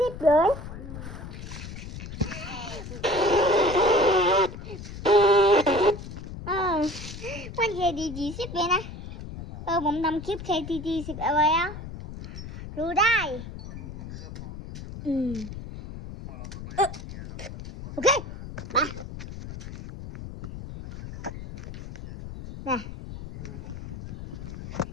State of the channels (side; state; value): left; noise; rumble, 10 dB below the sound